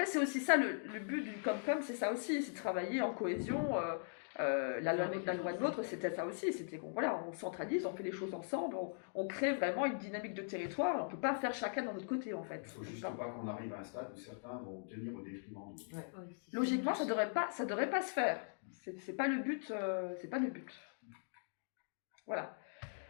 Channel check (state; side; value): silent; right; digital silence